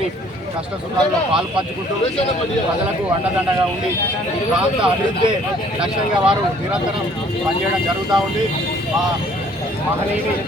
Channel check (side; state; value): both; normal; correlation 0.58